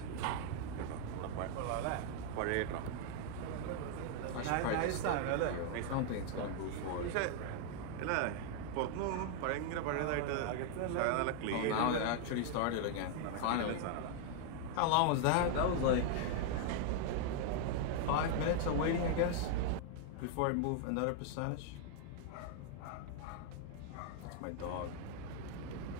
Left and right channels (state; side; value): different; both; correlation 0.00